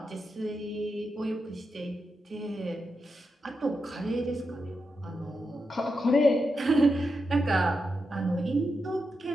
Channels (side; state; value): both; normal; correlation 0.87